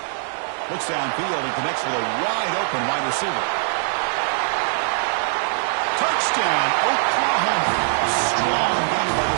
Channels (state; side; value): silent; left; digital silence